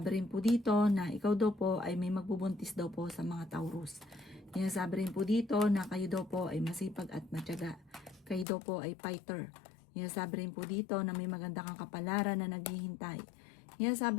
rin po dito na ikaw daw po ay may magbubuntis daw po sa mga Taurus. Sinasabi rin po dito na kayo daw po ay masipag at matyaga. Kayo daw po ay fighter. Sinasabi rin po dito na may maganda kang kapalaran na naghihintay.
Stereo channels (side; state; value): right; drops out; at 8.5 s